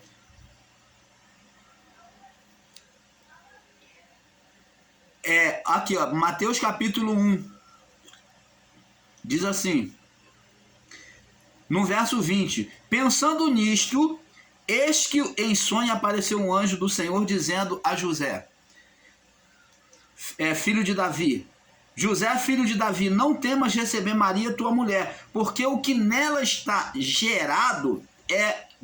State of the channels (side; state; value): both; identical; correlation 1.00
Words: Aqui, ó, Mateus capítulo 1. Diz assim, no verso 20: pensando nisto, eis que em sonho apareceu um anjo do Senhor dizendo a José, filho de Davi, José, filho de Davi, não temas receber Maria, tua mulher, porque o que nela está gerado é